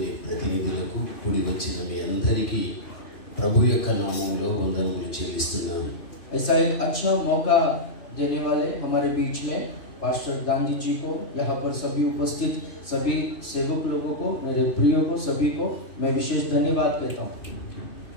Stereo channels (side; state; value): right; late; 2.5 ms